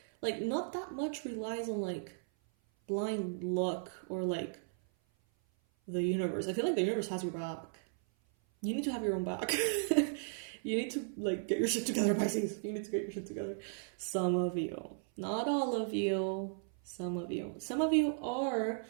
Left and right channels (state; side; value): silent; left; 54 dB below the other